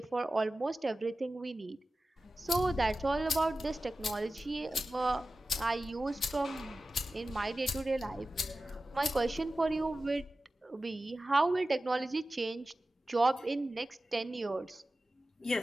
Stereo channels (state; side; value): normal; both; correlation 0.95